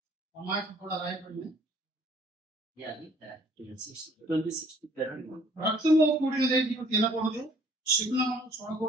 ఆ మాట కూడా రాయబడింది. Yeah, read that. 26 to 31. రక్తము కూడినదేది తినకూడదు, శకునమును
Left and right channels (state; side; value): normal; both; correlation 0.58